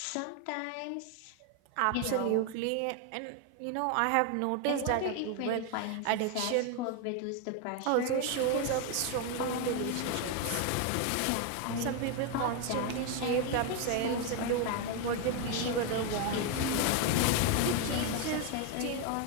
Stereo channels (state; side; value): different; both; correlation 0.01